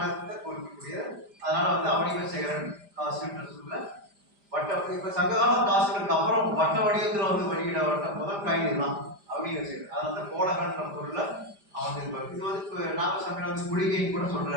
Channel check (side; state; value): left; late; 5.0 ms